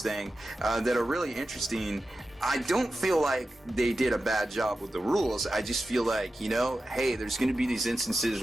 thing that are really interesting. I don't feel like they did a bad job with the rules. I just feel like, hey, there's going to be these instances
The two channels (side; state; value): both; normal; correlation 0.92